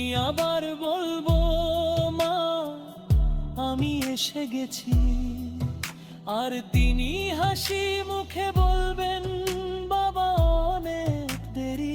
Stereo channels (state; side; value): identical; both; correlation 1.00